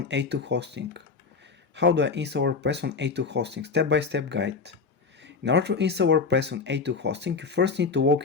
A2 hosting. How do I install WordPress on A2 hosting? Step-by-step guide. In order to install WordPress on A2 hosting, you first need to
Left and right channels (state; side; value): quieter; right; 4.9 dB